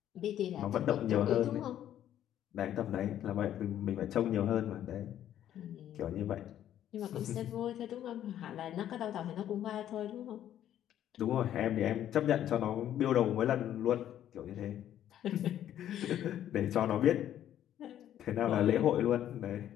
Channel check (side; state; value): right; quieter; 11.2 dB